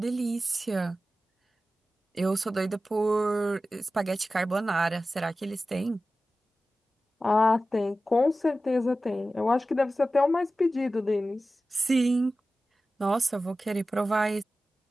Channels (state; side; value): normal; both; correlation 0.94